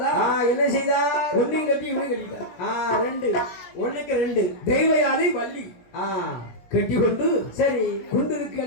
என்ன செய்தார்? ஒன்னையும் கட்டி இவனை கட்டிட்டார். ரெண்டு ஒண்ணுக்கு ரெண்டு தெய்வ யானை வள்ளி கட்டி கொண்டு சரி குண்டிருக்கு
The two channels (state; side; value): late; right; 17 ms